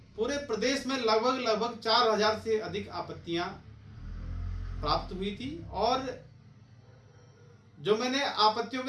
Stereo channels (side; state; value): both; identical; correlation 1.00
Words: पूरे प्रदेश में लगभग 4000 से अधिक आपत्तियां प्राप्त हुई थी। और जो मैंने आपत्तियों